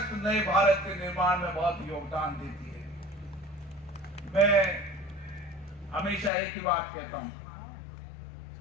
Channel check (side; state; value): right; drops out; at 6.3 s